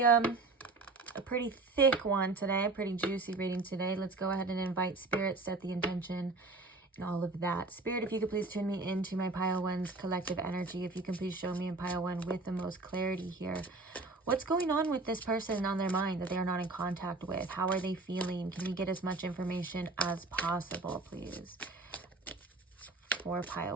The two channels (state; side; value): quieter; left; 3.5 dB